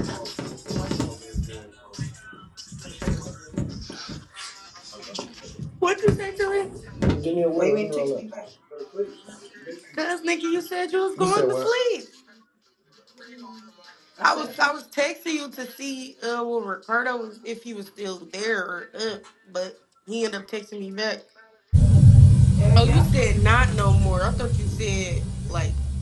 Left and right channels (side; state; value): both; identical; correlation 1.00